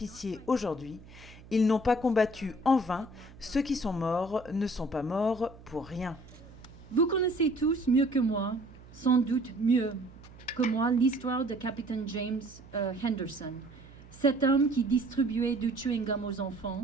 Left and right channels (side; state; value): right; noise; hum, 20 dB below the sound